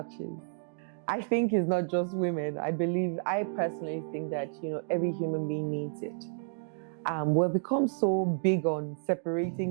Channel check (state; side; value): silent; left; digital silence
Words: I think it's not just women. I personally think that, every human being needs it. We've become so big on